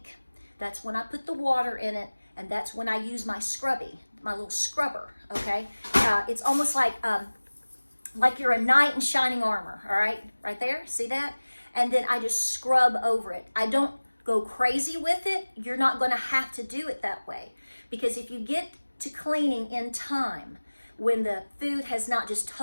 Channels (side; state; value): both; inverted; correlation -1.00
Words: That's when I put the water in it. And that's when I use my scrubby, my little scrubber, okay? It's almost like you're a knight in shining armor, all right? Right there, see that? And then I just scrub over it. I don't go crazy with it. You're not gonna have to do it that way. Because if you get to cleaning in time, when the food has not just